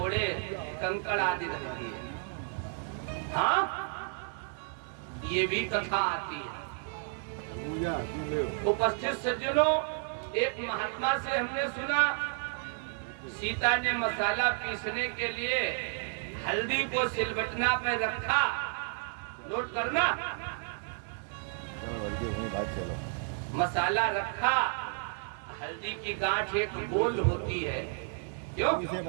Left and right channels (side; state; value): left; silent; 56 dB below the other